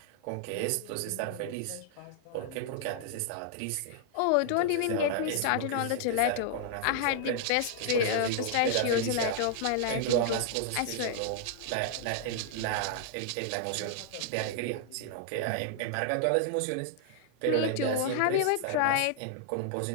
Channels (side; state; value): both; different; correlation -0.01